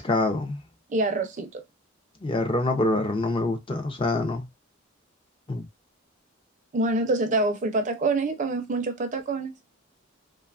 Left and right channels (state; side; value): normal; both; correlation 0.35